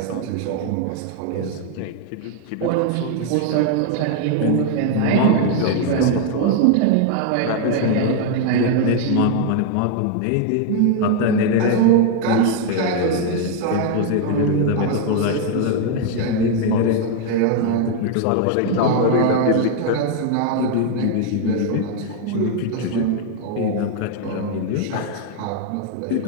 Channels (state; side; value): different; both; correlation 0.00